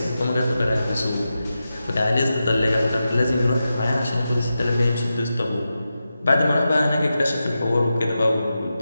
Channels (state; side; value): inverted; both; correlation -0.91